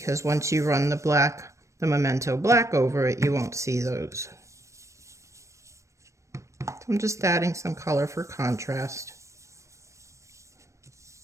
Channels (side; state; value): left; late; 0.15 ms